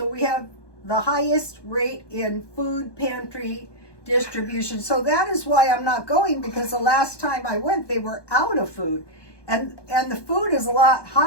we have the highest rate in food pantry distribution. So that is why I'm not going, because the last time I went, they were out of food. And the food is a lot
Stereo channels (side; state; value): right; late; 1.2 ms